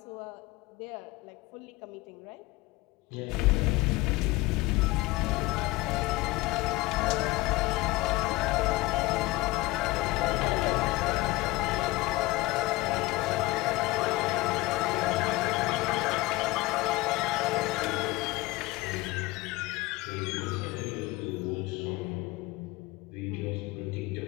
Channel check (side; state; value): right; quieter; 20.3 dB